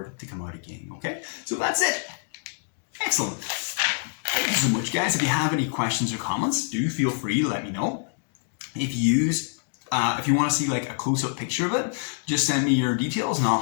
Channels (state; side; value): silent; right; digital silence